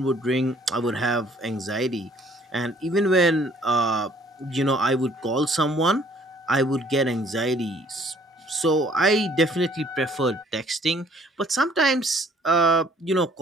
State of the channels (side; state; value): both; normal; correlation 0.59